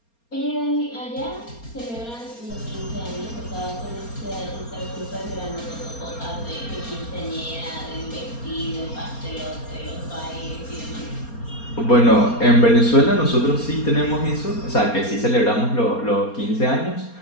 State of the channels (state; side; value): late; right; 4.3 ms